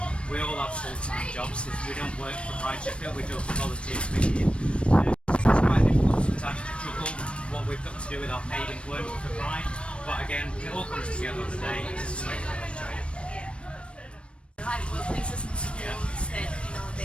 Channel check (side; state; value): right; late; 0.059 ms